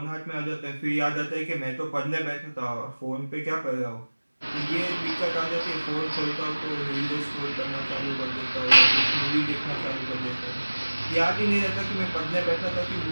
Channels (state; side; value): inverted; both; correlation -1.00